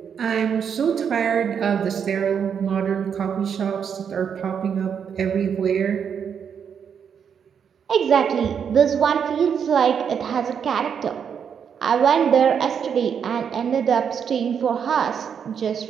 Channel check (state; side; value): quieter; left; 7.4 dB